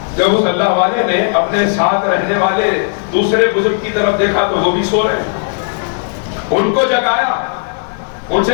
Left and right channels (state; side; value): silent; right; 70 dB below the other